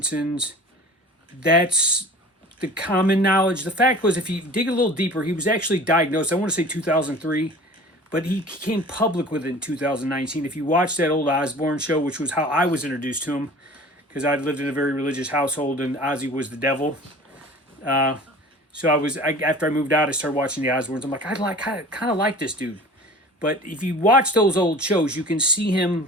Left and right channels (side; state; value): both; normal; correlation 0.42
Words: That's the common knowledge. The fact was, if you dig a little deeper, he was actually diagnosed, I want to say 2003, but he came public with it in 2019. If you watch that old Osbourne show, which was how I was introduced to him, because I'd lived in a very religious household and Ozzy was the devil. So after I moved out, I started watching the Osbournes. I'm like, I kind of like this dude. But if you watch those old shows, you can see him